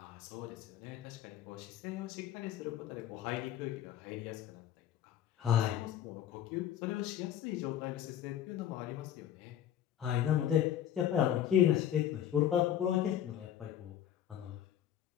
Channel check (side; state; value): right; quieter; 10.7 dB